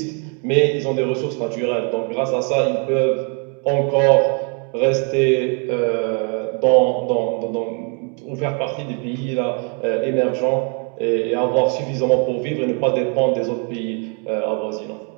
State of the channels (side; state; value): left; quieter; 38.7 dB